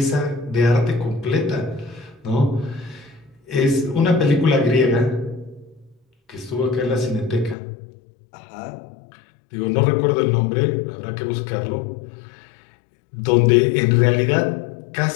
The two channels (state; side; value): drops out; right; at 7.6 s